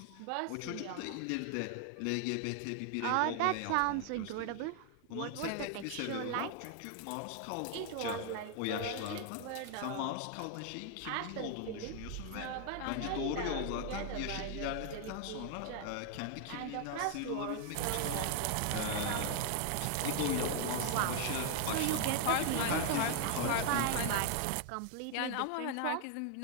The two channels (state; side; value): different; both; correlation 0.00